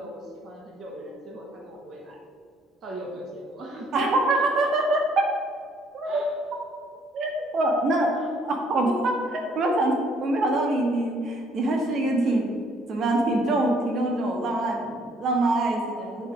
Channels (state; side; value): normal; both; correlation 0.64